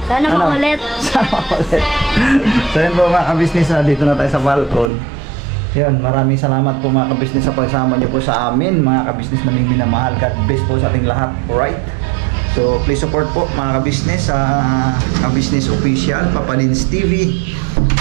Sana makulit. Sana makulit. So yun po mga ka-business, dito na tayo sa Falcon. Yun, maraming salamat po mga ka-business sa pagsama niyo po sa amin, mga ka-business naming minamahal. God bless po sa ating lahat, alright? So please support po mga ka-business sa ka-business official, Papa Lins TV,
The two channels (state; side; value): drops out; left; at 4.9 s